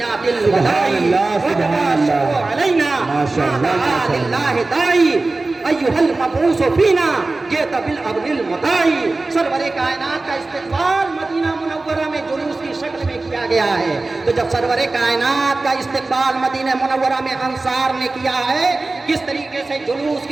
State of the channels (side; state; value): left; quieter; 3.3 dB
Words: الوداع وطبع الشمس علینا ما دعا للہ داعی ایھا المبعوث فینا جئت بالامر المطاع۔ سرور کائنات کا استقبال مدینہ منورہ میں جلوس کی شکل میں کیا گیا ہے، تو جب سرور کائنات کا استقبال مدینہ منورہ میں انصار نے کیا ہے کس طریقے سے جلوس